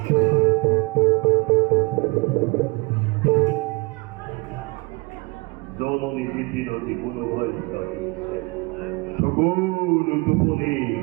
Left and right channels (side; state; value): left; quieter; 27.0 dB